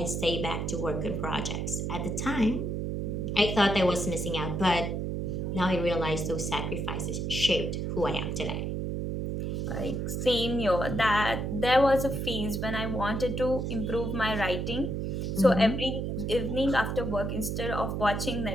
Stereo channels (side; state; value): right; noise; hum, 2 dB below the sound